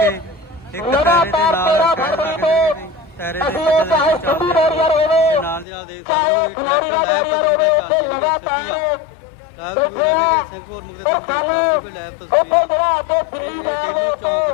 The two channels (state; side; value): drops out; right; at 5.7 s